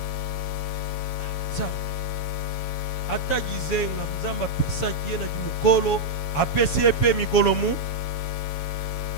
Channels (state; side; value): late; right; 7.1 ms